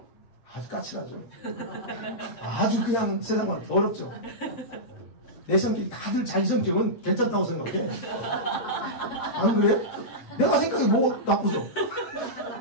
아주 까칠하죠. 아주 그냥 세상만 더럽죠. 내 성격이 다들 자기 성격은 괜찮다고 생각해. 안 그래? 내가 생각이 뭐 나쁘죠?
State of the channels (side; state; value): right; late; 7.9 ms